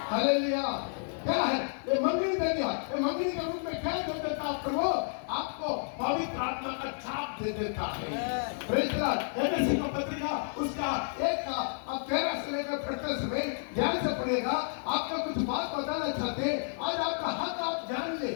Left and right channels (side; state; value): right; silent; 57 dB below the other